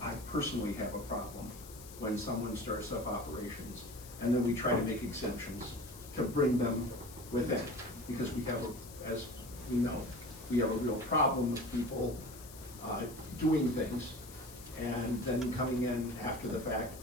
I personally have a problem when someone starts up operations, and then we try to make exemptions to bring them within. Because we have, as we know, we have a real problem with people doing things and then coming in after the fact.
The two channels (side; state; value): left; noise; hiss, 16 dB below the sound